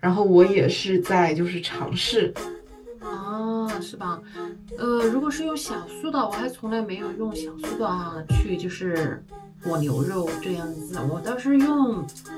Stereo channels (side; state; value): both; identical; correlation 1.00